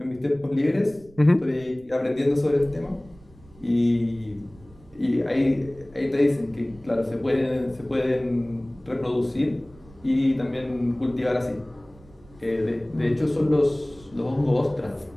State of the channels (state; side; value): noise; right; rumble, 24 dB below the sound